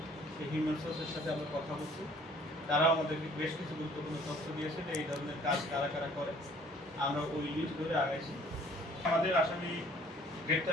সেই হিউম্যান সোর্সের সাথে আমরা কথা বলছি। তারাও আমাদেরকে বেশ কিছু গুরুত্বপূর্ণ তথ্য দিয়েছে যে এই ধরনের কাজ কারা কারা করে। আমরা ওই লিস্ট ধরে আগাইছি। আমাদের আসামি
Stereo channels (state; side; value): normal; both; correlation 0.56